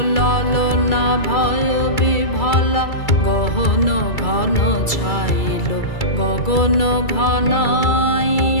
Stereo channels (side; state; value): right; late; 2.3 ms